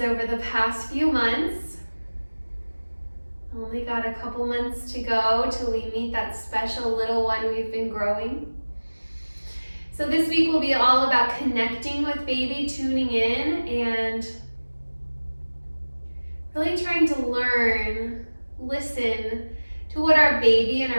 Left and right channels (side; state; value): both; inverted; correlation -1.00